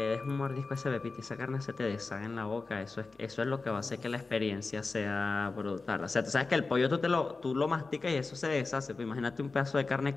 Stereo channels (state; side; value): quieter; right; 3.9 dB